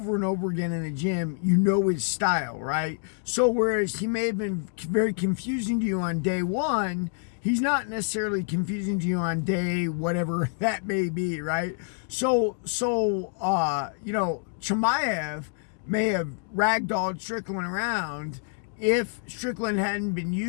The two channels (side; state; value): right; silent; digital silence